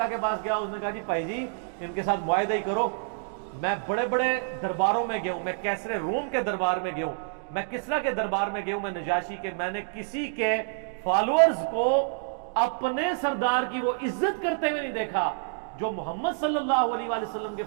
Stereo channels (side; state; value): left; silent; digital silence